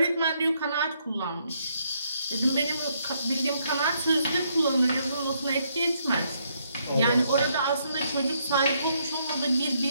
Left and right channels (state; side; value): inverted; both; correlation -0.73